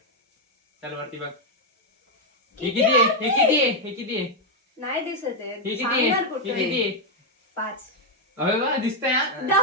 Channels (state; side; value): normal; both; correlation 0.01